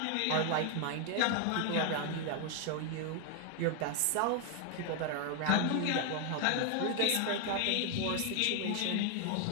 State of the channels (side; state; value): both; different; correlation 0.00